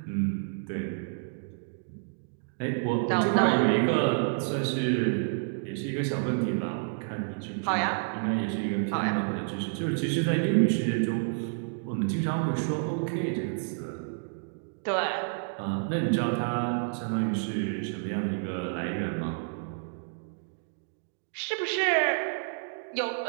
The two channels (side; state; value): left; silent; digital silence